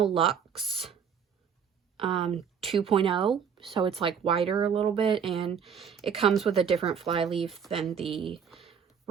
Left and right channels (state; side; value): quieter; left; 7.3 dB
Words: Luxe 2.0, so it's like wider a little bit, and it comes with a different fly leaf than the